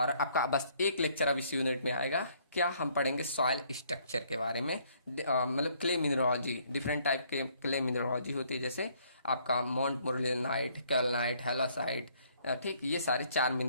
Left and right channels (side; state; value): both; inverted; correlation -0.65